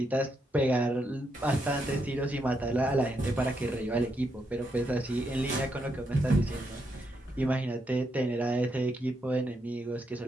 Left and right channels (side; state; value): both; normal; correlation 0.80